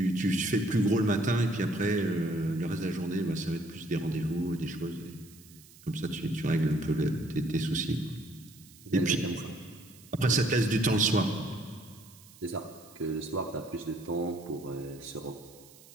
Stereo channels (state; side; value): noise; right; hiss, 23 dB below the sound